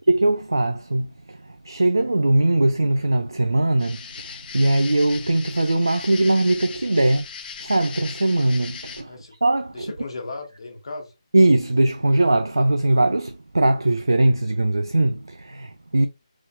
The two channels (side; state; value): both; inverted; correlation -0.97